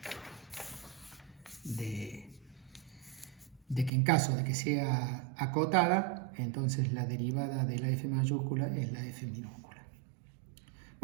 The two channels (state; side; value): drops out; left; at 3.9 s